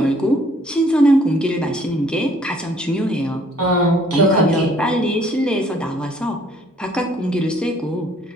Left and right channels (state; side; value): normal; both; correlation 0.60